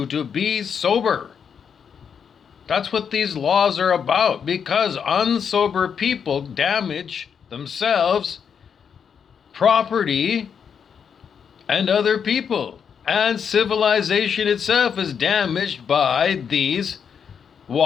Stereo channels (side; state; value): right; quieter; 7.1 dB